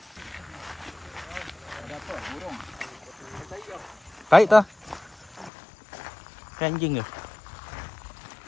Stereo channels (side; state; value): right; drops out; at 5.5 s